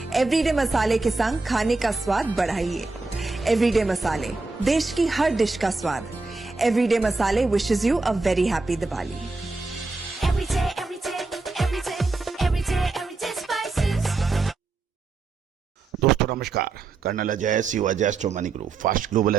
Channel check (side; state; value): left; quieter; 3.8 dB